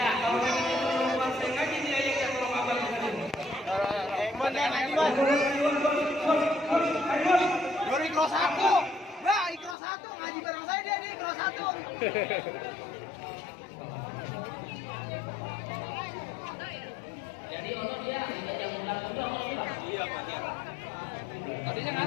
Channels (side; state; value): right; drops out; at 9.8 s